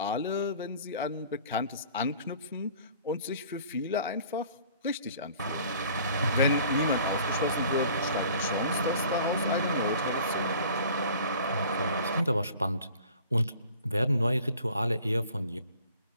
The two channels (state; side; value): inverted; both; correlation -0.49